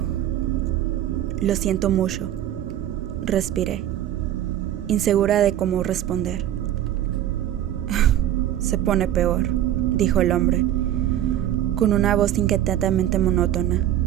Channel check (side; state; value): left; quieter; 11.9 dB